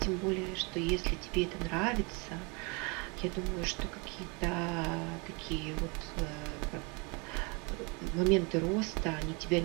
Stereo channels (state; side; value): quieter; left; 30.7 dB